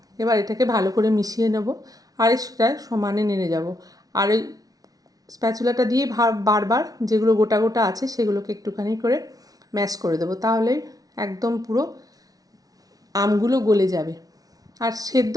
এবার এটাকে ভালো করে মিশিয়ে নেব, আর সেটা সমানে নেড়ে যাব। আর ওই স্প্যাচুলাটা দিয়ে বারবার যেগুলো গোটা গোটা আছে সেগুলোকে একটুখানি করে ম্যাশ করে দেবো, তাহলে একদম পুরো আমগুলো গলে যাবে আর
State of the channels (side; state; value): left; late; 0.18 ms